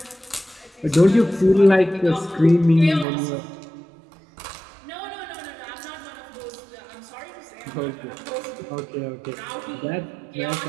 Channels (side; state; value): left; drops out; at 3.1 s